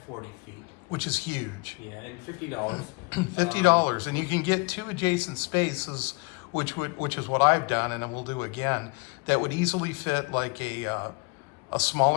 40 feet. Which is huge. Yeah, and $50. $50, and you can get 2 adjacent spaces, which is what I've done, and we'll do again, that would easily fit like a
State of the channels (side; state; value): right; quieter; 28.9 dB